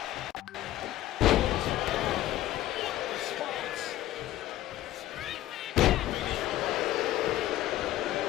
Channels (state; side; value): quieter; right; 14.4 dB